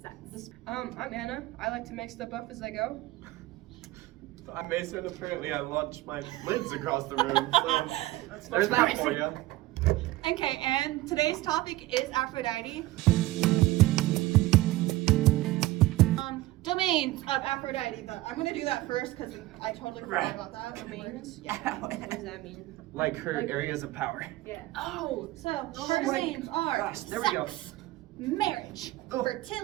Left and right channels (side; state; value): left; quieter; 17.9 dB